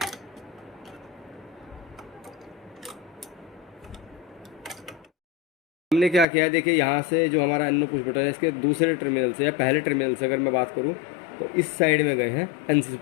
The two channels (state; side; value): drops out; right; at 6.2 s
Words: हमने क्या किया है, देखिए यहाँ से जो हमारा एनो पुश बटन है इसके दूसरे टर्मिनल से या पहले टर्मिनल से अगर मैं बात करूँ तो इस साइड में गए हैं एनसी